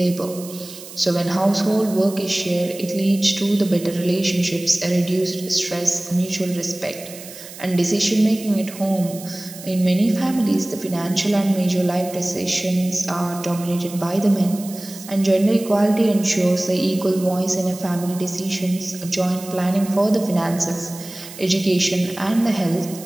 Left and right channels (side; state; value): right; noise; hiss, 15 dB below the sound